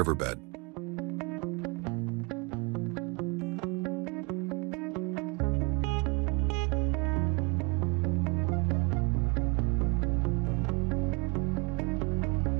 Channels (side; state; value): left; quieter; 30.5 dB